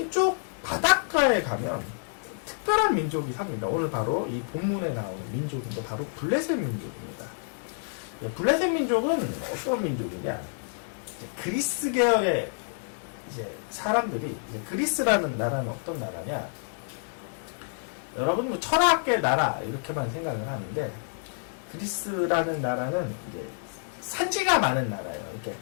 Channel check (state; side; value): silent; right; digital silence